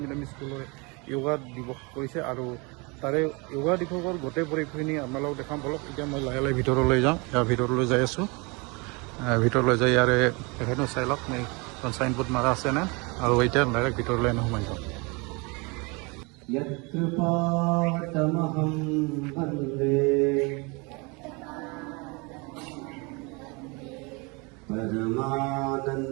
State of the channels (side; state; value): left; quieter; 28.7 dB